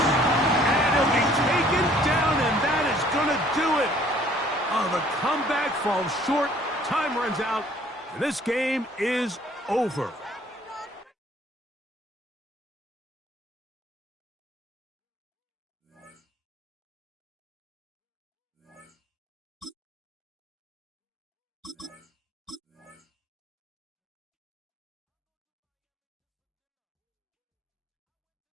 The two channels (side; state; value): both; normal; correlation 0.58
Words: And he'll be taken down, and that is going to do it. Oh, the comeback falls short. Time runs out. And this game is over.